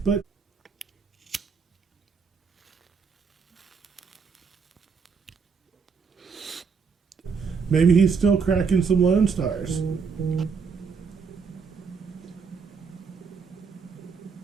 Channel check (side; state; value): left; quieter; 5.5 dB